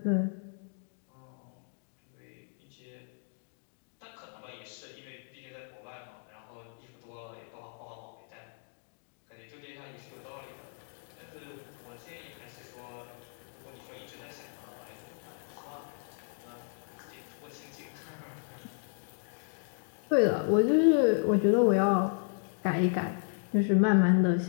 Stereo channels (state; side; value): silent; right; 55 dB below the other